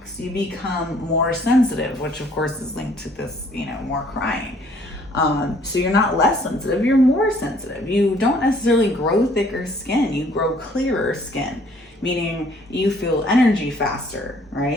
you become more sensitive, which of course is linked to this, more crying. So you're not less sensitive, you're more sensitive. You don't necessarily grow thicker skin, you grow clearer skin, meaning you feel energy faster,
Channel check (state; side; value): normal; both; correlation 0.60